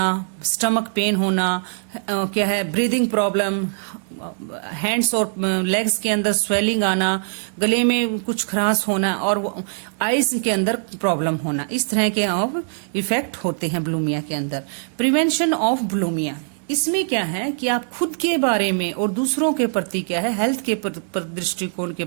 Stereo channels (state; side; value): silent; left; digital silence